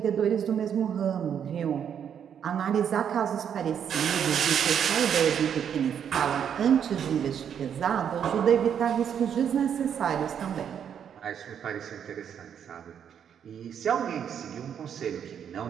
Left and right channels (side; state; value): left; quieter; 8.4 dB